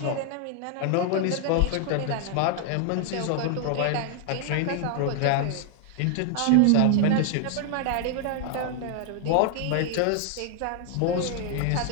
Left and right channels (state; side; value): different; both; correlation 0.00